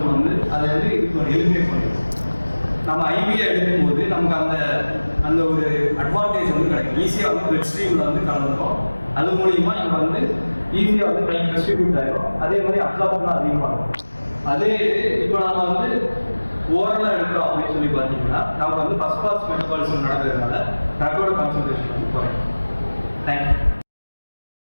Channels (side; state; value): both; inverted; correlation -1.00